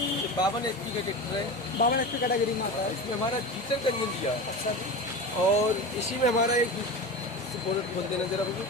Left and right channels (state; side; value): normal; both; correlation 0.28